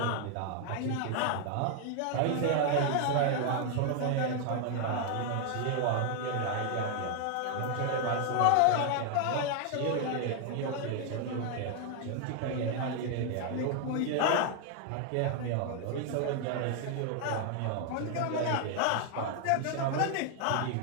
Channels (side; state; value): both; different; correlation 0.00